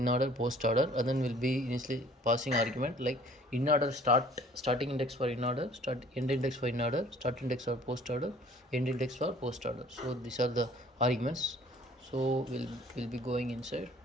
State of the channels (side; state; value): both; normal; correlation 0.53